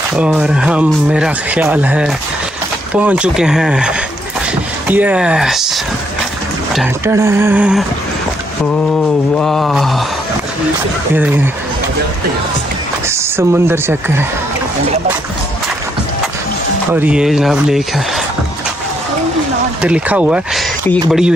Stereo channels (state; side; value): normal; both; correlation 0.74